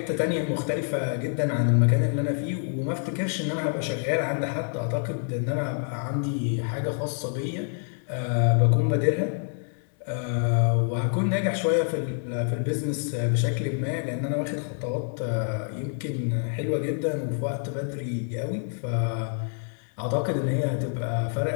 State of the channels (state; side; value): silent; right; 57 dB below the other